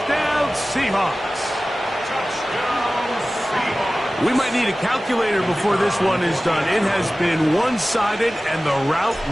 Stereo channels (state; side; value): normal; both; correlation 0.97